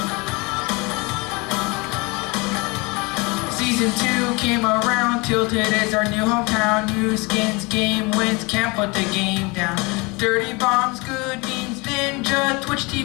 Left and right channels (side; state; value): right; quieter; 26.9 dB